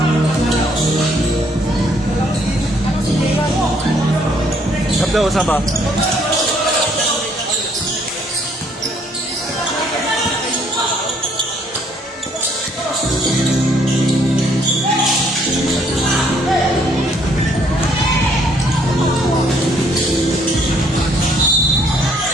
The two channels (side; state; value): both; normal; correlation 0.66